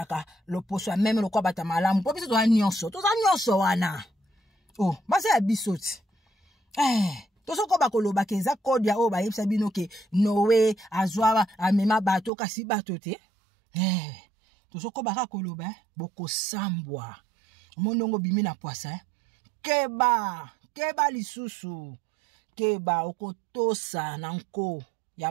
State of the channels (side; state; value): left; drops out; at 12.3 s